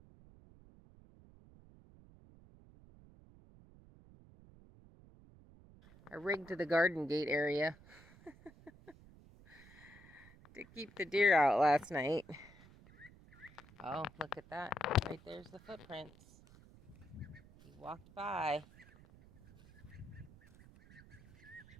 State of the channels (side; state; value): right; noise; rumble, 22 dB below the sound